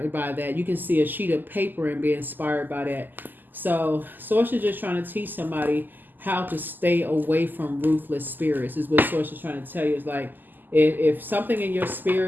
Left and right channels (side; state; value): left; late; 0.088 ms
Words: by that. You can see a sheet of paper and be inspired by that. So Source is just trying to teach somebody how to stay away from ruthless spirits is what Source is trying to tell you. Is like, if something in your